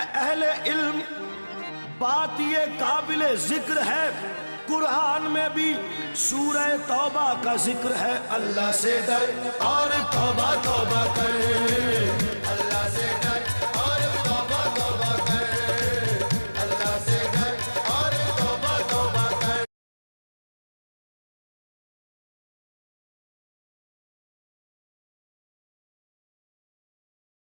اہل علم، بات یہ قابل ذکر ہے، قرآن میں بھی سورہ توبہ کا ذکر ہے۔ اللہ سے ڈر اور توبہ توبہ کر، اللہ سے ڈر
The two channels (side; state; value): both; inverted; correlation -1.00